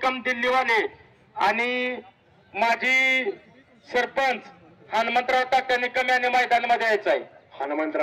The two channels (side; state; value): both; identical; correlation 1.00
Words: दिल्लीवाले आणि माजी सरपंच हनुमंतराव तात्या निकम यांनी मैदानामध्ये यायचं आहे.